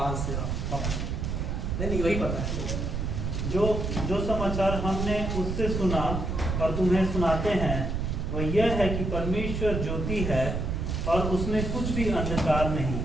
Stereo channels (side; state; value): right; noise; rumble, 2 dB below the sound